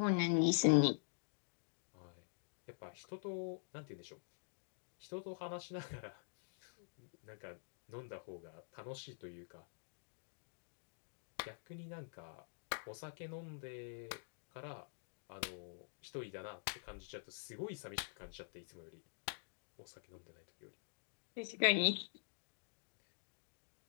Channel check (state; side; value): silent; right; digital silence